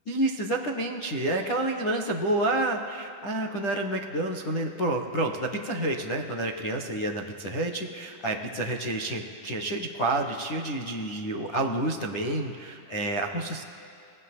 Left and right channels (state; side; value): late; right; 10 ms